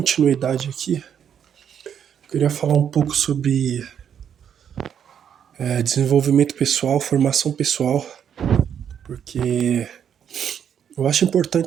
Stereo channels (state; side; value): quieter; left; 8.5 dB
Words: aqui, eu queria falar um pouco sobre desenvolvimento pessoal, formação pessoal, porque eu acho